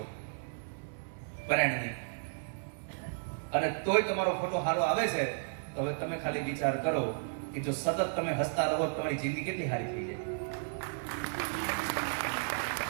પરાયણની, અને તોય તમારો ફોટો સારો આવે છે, તો હવે તમે ખાલી વિચાર કરો કે જો સતત તમે હસતા રહો તમારી જિંદગી કેટલી સારી થઈ જાય.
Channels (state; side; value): silent; left; digital silence